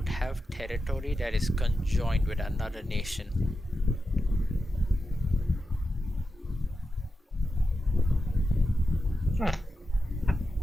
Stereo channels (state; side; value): normal; both; correlation 0.89